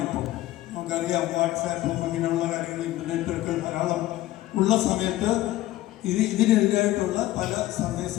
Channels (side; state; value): right; quieter; 15.9 dB